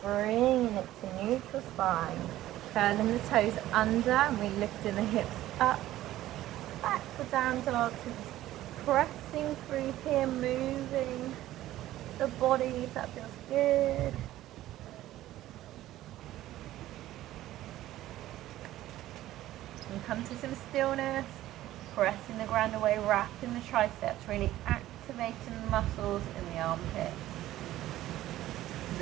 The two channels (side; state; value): left; quieter; 14.6 dB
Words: bringing it to neutral spine. Curling the toes under and we lifting the hips up. Back for down dog. Pressing through here, moving the body if that feels good. And come to some stillness, pressing the ground away, wrapping the triceps, really activating the muscles in the armpits.